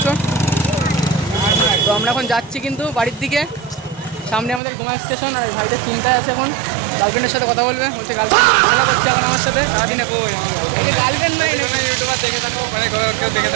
তো আমরা এখন যাচ্ছি কিন্তু বাড়ির দিকে, সামনে আমাদের ঘুমা স্টেশন। আর ভাইটা চিন্তায় আছে, এখন গার্লফ্রেন্ডের সাথে কথা বলবে, বলছে গার্লফ্রেন্ড ঝামেলা করছে এখন আমার সাথে সারাদিনে। গার্লফ্রেন্ড নাই, ইউটিউবার দেখে থাকো, মানে দেখে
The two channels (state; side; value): drops out; left; at 4.6 s